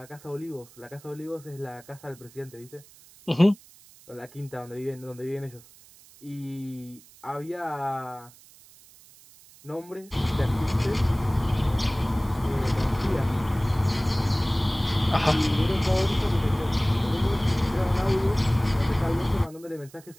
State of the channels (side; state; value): right; noise; hiss, 24 dB below the sound